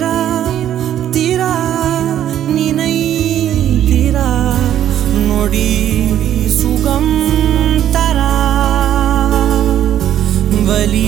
திரா நினை திரா நொடி சுகம் தரா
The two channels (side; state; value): left; quieter; 11.0 dB